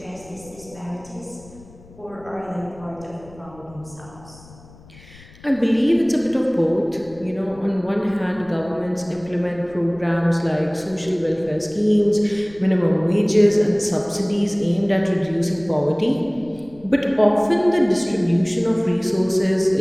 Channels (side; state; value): left; noise; rumble, 23 dB below the sound